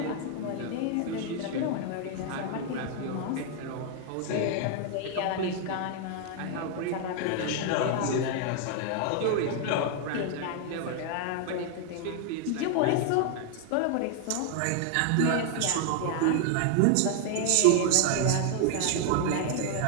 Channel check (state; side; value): different; both; correlation 0.00